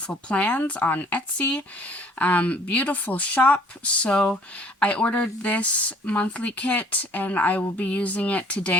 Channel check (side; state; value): both; normal; correlation 0.56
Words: Plans on Etsy. Beautiful shop. So I ordered this monthly kit and I will be using it